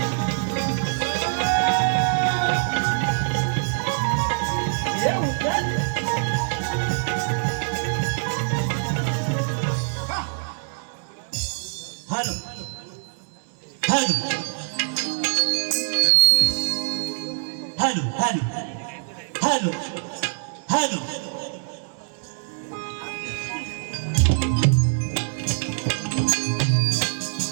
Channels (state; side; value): silent; left; digital silence